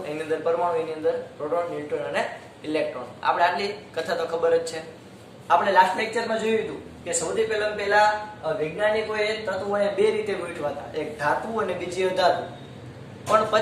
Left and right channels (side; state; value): both; identical; correlation 1.00